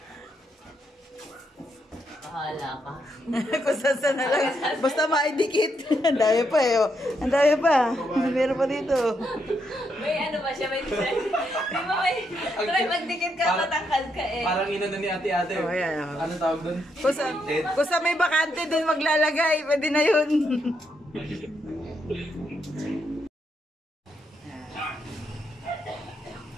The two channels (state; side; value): normal; both; correlation 0.79